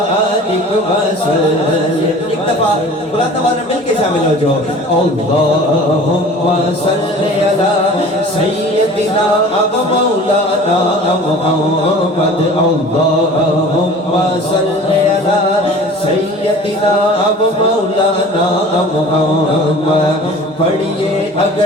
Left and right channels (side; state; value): both; normal; correlation 0.43